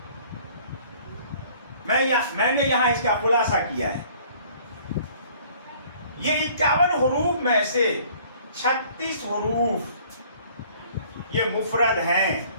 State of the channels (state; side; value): inverted; both; correlation -0.55